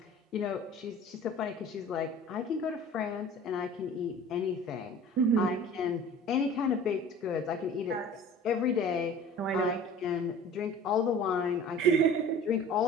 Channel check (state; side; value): normal; both; correlation 0.43